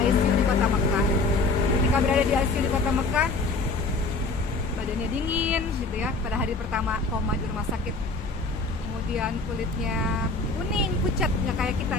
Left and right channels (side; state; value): right; quieter; 3.6 dB